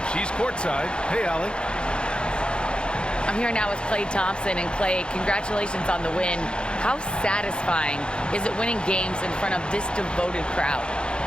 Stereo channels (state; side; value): late; right; 0.053 ms